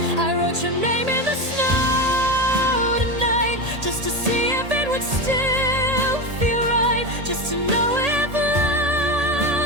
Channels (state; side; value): late; left; 1.8 ms